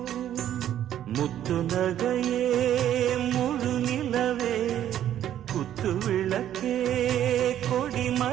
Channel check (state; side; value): quieter; left; 11.2 dB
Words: முத்து நகையே முழு நிலவே குத்து விளக்கே கொடி